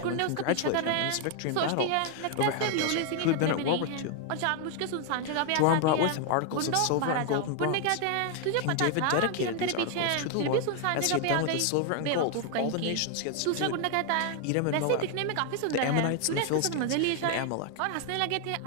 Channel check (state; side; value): different; both; correlation 0.00